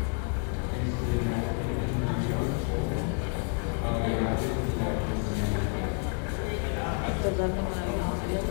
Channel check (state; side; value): quieter; right; 37.5 dB